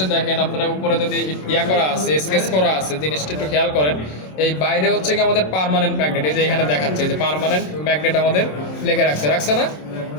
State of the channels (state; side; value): late; right; 27 ms